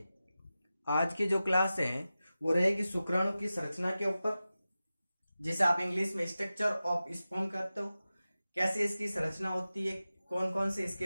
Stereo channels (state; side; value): inverted; both; correlation -0.94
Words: आज की जो क्लास है वो रहेगी शुक्राणु की संरचना के ऊपर, जिसे आप इंग्लिश में स्ट्रक्चर ऑफ स्पर्म कहते हो। कैसे इसकी संरचना होती है, कौन कौन से इसके